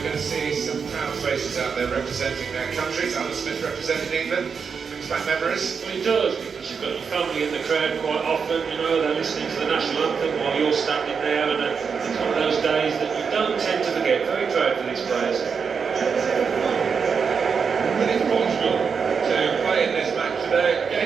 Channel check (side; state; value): left; quieter; 6.0 dB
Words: we're going to see some proud faces out there representing their countries. Alan Smith representing England. Brings back memories. Well, he does, because you've got your family in the crowd quite often, you know, they're listening to the national anthem while you're standing there, and it's one of those days that you don't tend to forget. Very proud for these players. But it's Portugal to play in this match today